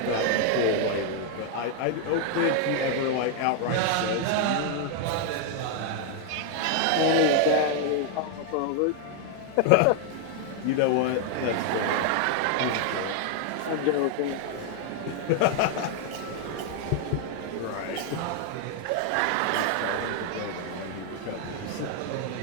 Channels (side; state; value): both; different; correlation 0.00